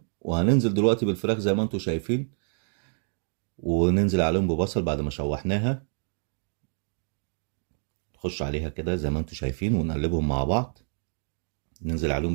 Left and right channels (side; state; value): left; silent; digital silence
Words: وهننزل دلوقتي بالفراخ زي ما انتوا شايفين، وننزل عليهم ببصل بعد ما شوحناها. نخش عليها كده زي ما انتوا شايفين ونقلبهم مع بعض. ننزل